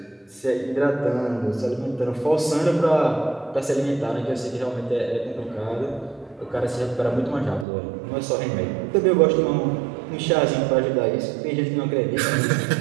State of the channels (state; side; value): drops out; left; at 7.7 s